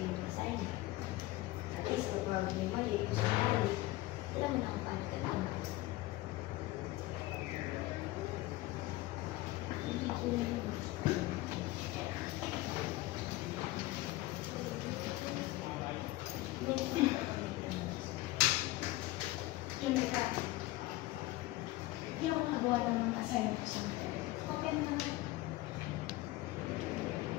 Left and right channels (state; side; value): quieter; right; 18.0 dB